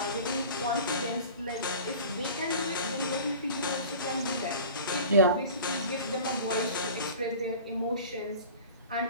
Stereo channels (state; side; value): inverted; both; correlation -0.39